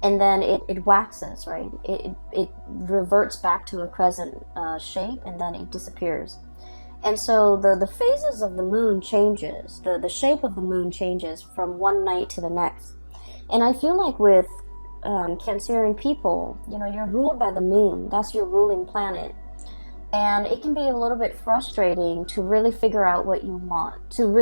and then it waxes, right? It reverts back to a crescent shape, and then it disappears. And so the phases of the moon changes, the shape of the moon changes from one night to the next. And I feel like with Cancerian people, you know, you're ruled by the moon. That's your ruling planet. And it can be a little bit frustrating to really figure out what you want, to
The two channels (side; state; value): both; inverted; correlation -1.00